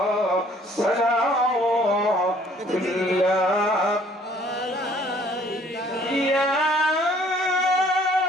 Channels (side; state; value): both; normal; correlation 0.58